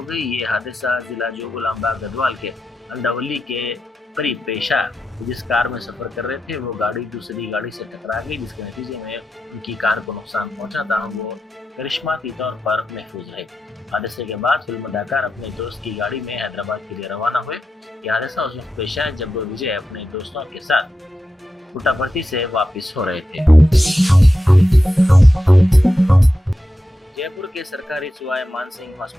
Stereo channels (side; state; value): both; normal; correlation 0.89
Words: गई। ये हादसा जिला जोगुलांबा गढ़वाल के अंडावली के करीब पेश आया। जिस कार में सफर कर रहे थे वो गाड़ी दूसरी गाड़ी से टकरा गई, जिसके नतीजे में उनकी कार को नुकसान पहुंचा था। वो करिश्माती तौर पर महफूज रहे। हादसे के बाद फिल्म अदाकार अपने दोस्त की गाड़ी में हैदराबाद के लिए रवाना हुए। यह हादसा उस वक्त पेश आया जब विजय अपने दोस्तों के साथ पुट्टापर्थी से वापस हो रहे थे। जयपुर के सरकारी सुवाय मानसिंह